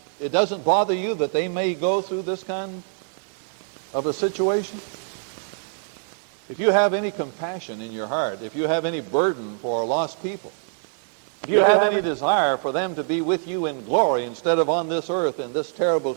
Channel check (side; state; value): left; silent; digital silence